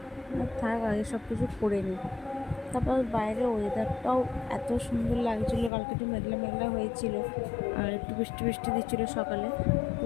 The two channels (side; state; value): right; drops out; at 5.7 s